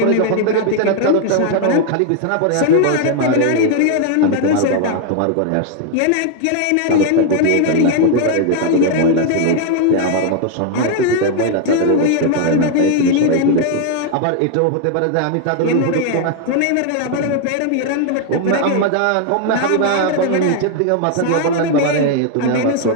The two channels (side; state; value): both; different; correlation 0.00